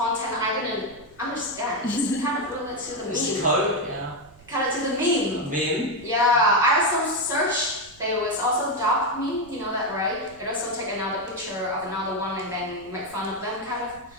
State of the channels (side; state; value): right; noise; rumble, 26 dB below the sound